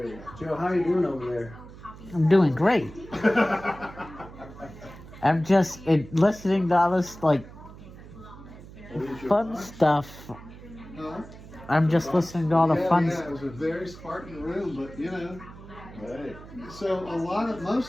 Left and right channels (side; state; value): right; noise; hum, 17 dB below the sound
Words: Joe, how you doing over there? I'm doing great. I'm just listening to all this like fun stuff. Huh? I'm just listening to all the fun Yeah, stuff. it was a very Spartan room, but you know. Right. So